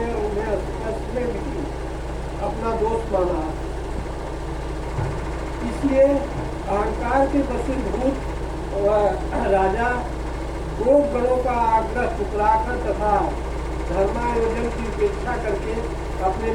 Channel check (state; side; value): identical; both; correlation 1.00